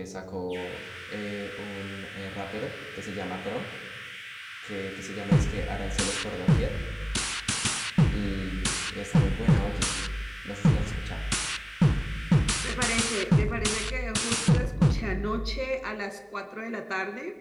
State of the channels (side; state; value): both; identical; correlation 1.00